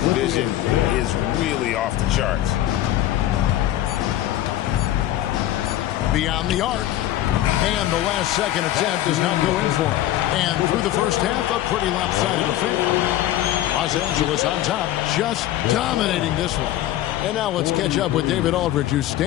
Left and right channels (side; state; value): right; quieter; 13.6 dB